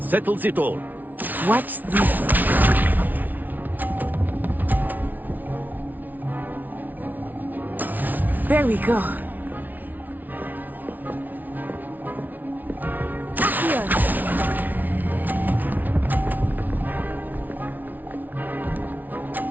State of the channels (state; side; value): late; left; 0.081 ms